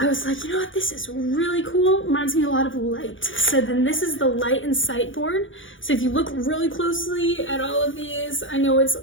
was like, you know what, this is really cool. Reminds me a lot of light. So then this is the light and sight board. So if you look really closely at all of these, I know it's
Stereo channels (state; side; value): late; right; 0.57 ms